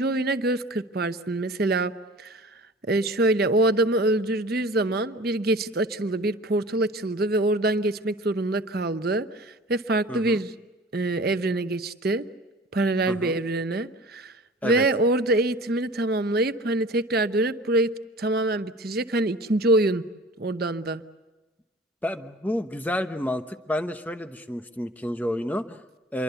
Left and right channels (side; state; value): both; normal; correlation 0.43